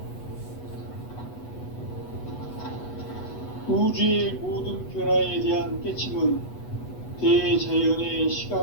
우주의 모든 변화에 대한 깨침은 대자연의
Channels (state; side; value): late; right; 8.2 ms